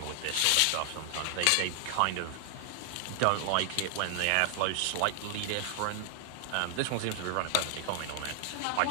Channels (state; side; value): different; both; correlation 0.00